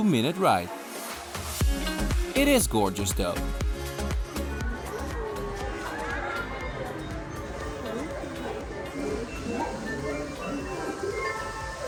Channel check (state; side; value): identical; both; correlation 1.00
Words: ride. It is gorgeous though.